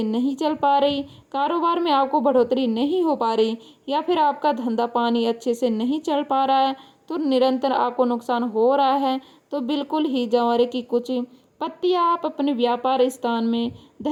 नहीं चल पा रही, कारोबार में आपको बढ़ोतरी नहीं हो पा रही, या फिर आपका धंधा पानी अच्छे से नहीं चल पा रहा है, तो निरंतर आपको नुकसान हो रहा है, तो बिल्कुल ही जंवारे की कुछ पत्तियां आप अपने व्यापार स्थान में,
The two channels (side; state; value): both; identical; correlation 1.00